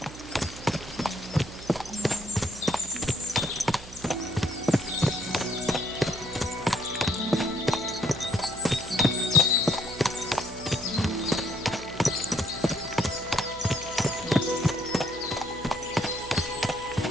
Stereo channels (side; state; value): right; noise; hum, 16 dB below the sound